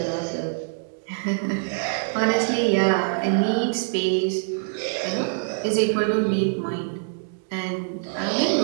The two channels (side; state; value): left; silent; 62 dB below the other